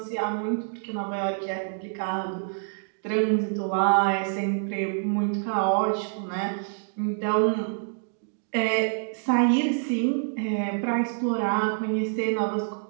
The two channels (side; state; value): left; silent; digital silence